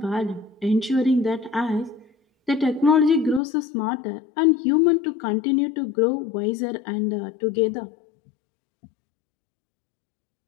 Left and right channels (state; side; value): drops out; right; at 3.4 s